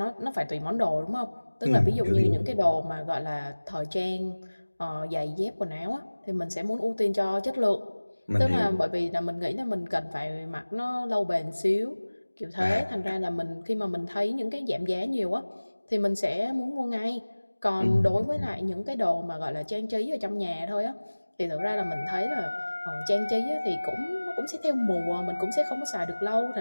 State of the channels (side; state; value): both; inverted; correlation -1.00